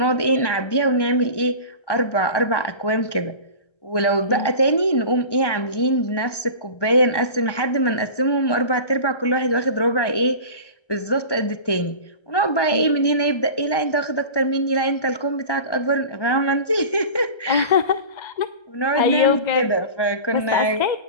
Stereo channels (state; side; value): late; right; 1.2 ms